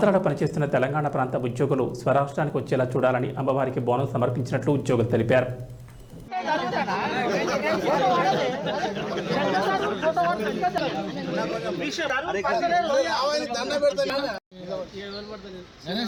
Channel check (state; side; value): identical; both; correlation 1.00